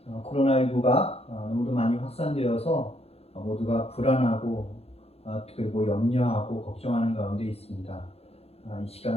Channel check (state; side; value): late; right; 0.29 ms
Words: 코로나19가 너무도 많이 확산되어서 모두가 불안하고 그리고 염려하고 걱정하는 가운데 있습니다. 이